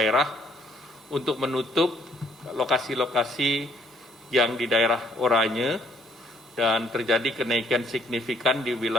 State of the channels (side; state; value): both; normal; correlation 0.64